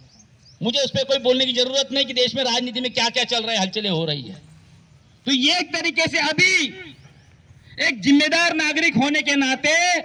मुझे उस पर कोई बोलने की जरूरत नहीं कि देश में राजनीति में क्या क्या चल रहा है, हलचलें हो रही है। तो ये एक तरीके से अभी एक जिम्मेदार नागरिक होने के नाते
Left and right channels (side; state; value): both; identical; correlation 1.00